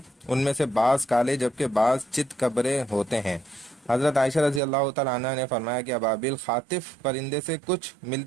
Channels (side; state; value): left; drops out; at 4.6 s